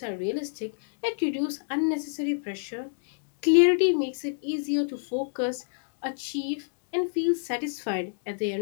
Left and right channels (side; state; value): right; silent; digital silence